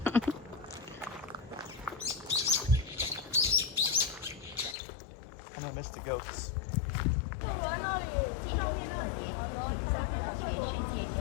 And I missed the goats.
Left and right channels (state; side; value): drops out; right; at 4.8 s